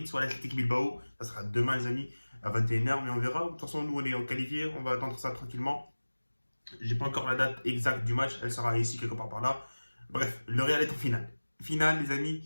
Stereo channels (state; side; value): inverted; both; correlation -1.00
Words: soit l'Atlético Bilbao. Ça sera demain, les amis, à 21h, mais on verra. De toute façon, nous, on est qualifiés. On va attendre ça tranquillement. J'ai pas encore la date exacte du match. Elle sera ici, quelque part par là. Bref, le Real est en finale. Finale, les